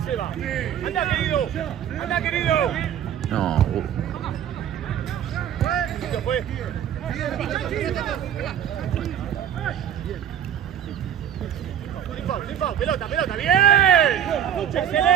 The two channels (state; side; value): quieter; left; 9.7 dB